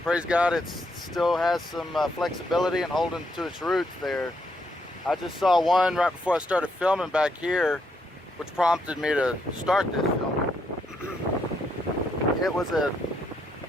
praise God, it still has some flexibility and holding to its roots there. I just saw one right before I started filming back here, which prompted me to start this film. It was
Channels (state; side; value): normal; both; correlation 0.76